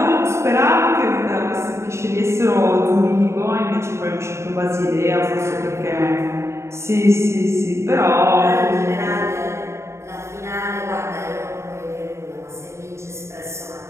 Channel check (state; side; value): late; left; 0.13 ms